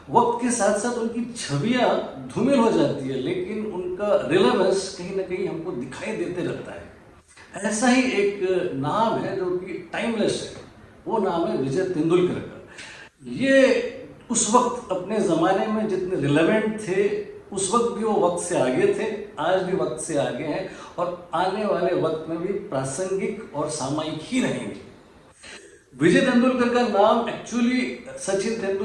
वक्त के साथ साथ उनकी छवियाँ धूमिल हो जाती है, लेकिन उनका रिलेवेंस कहीं ना कहीं हमको दिखाई देते रहता है। ऐसा ही एक नाम है जो कि टाइमलेस है, वो नाम है विजय तेंदुलकर का। ये उस वक्त अपने ज़माने में जितने रिलेवेंट थे, उस वक्त भी वो वक्त से आगे थे, आज भी वक्त से आगे हैं और आने वाले वक्त में भी प्रासंगिक और सामयिक ही रहेंगे। विजय तेंदुलकर का नाम एक्चुअली सचिन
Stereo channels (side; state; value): both; identical; correlation 1.00